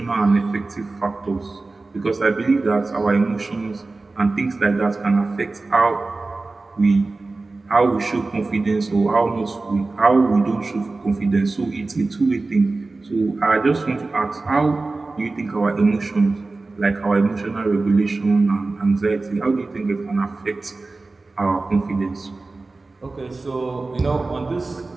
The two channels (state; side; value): quieter; left; 3.5 dB